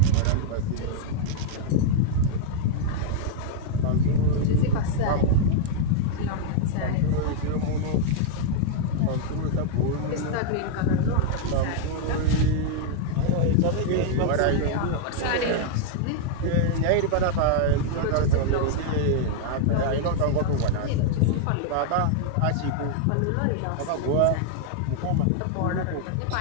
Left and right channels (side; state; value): both; different; correlation -0.01